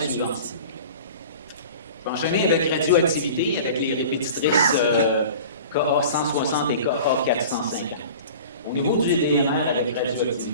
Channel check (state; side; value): inverted; both; correlation -0.40